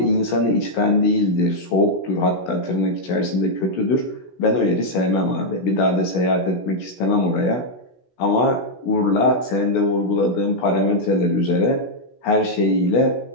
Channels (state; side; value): late; right; 16 ms